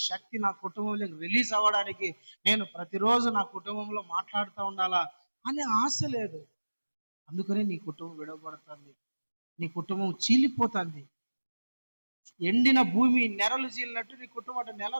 శక్తి నా కుటుంబంలో రిలీజ్ అవ్వడానికి నేను ప్రతిరోజు నా కుటుంబంలో మాట్లాడుతూ ఉండాలా అనే ఆశ లేదు. అందుకనే నీ కుటుంబం విడవబడుతుంది, నీ కుటుంబం చీలిపోతుంది. ఎండిన భూమి నెరలు చీలినట్టు నీ కుటుంబం అంటే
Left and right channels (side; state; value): both; inverted; correlation -1.00